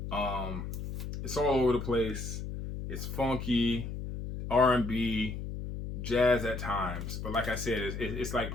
It's all over the place. It's funky, R&B, jazz at times. But like I said, it's like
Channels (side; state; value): left; noise; hum, 6 dB below the sound